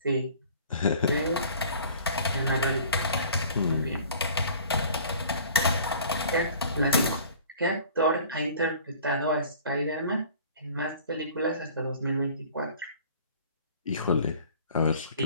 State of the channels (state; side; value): inverted; both; correlation -0.48